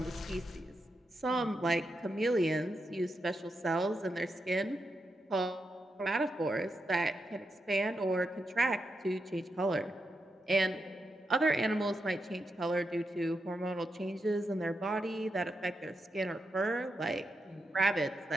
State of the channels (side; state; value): both; normal; correlation 0.85